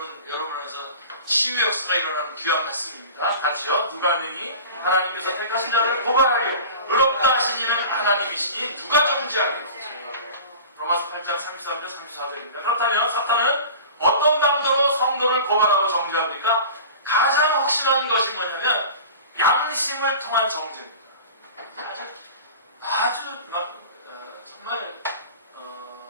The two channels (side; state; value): both; inverted; correlation -0.38